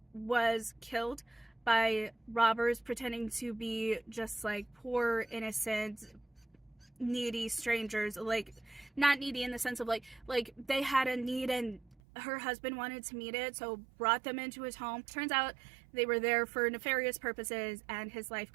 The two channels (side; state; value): left; drops out; at 12.0 s